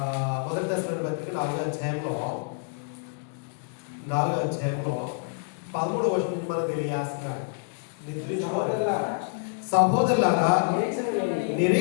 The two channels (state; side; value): silent; right; digital silence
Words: మొదటి దశలోని పత్రిక 4వ అధ్యాయంలో 13వ వచనం నుంచి మనకు తెలియజేస్తున్నాడు. సహోదరులారా